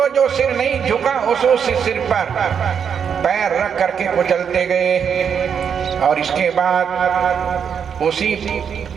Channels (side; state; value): left; quieter; 7.3 dB